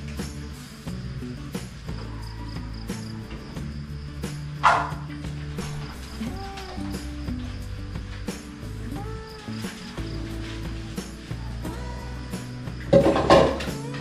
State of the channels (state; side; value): identical; both; correlation 1.00